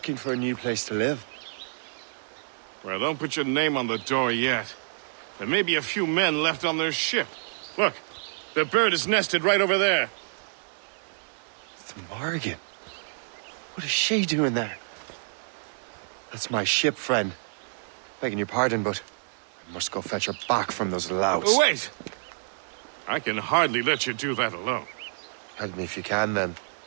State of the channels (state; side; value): silent; left; digital silence